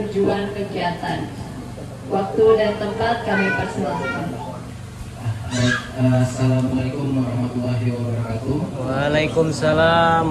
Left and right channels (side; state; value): both; identical; correlation 1.00